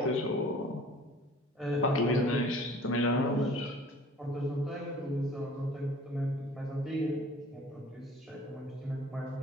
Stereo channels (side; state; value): both; normal; correlation 0.49